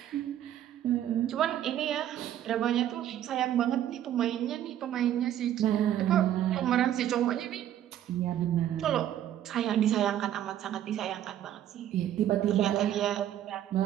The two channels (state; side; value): quieter; left; 11.4 dB